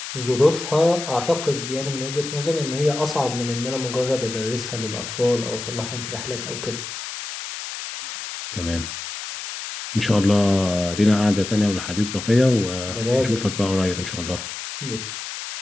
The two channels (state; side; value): noise; left; hiss, 8 dB below the sound